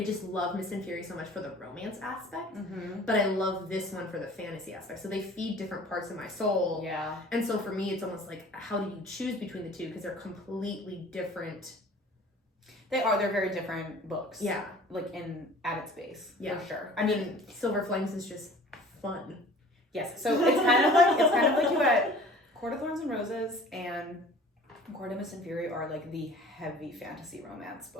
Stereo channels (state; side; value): normal; both; correlation 0.46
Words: just love Mist and Fury so much for the romance aspect, but I love this one for the fantasy aspect. So they feed different parts of my soul. Yeah. And so for me, it's almost how do you choose between the two? Because they're completely different. They are. They're very different books. Yeah. At its base. Yeah. For sure. I mean, Silver Flames is just fun. Yes. So it's kind of like you had Court of Thorns and Roses and Court of Mist and Fury are the heavy fantasy romance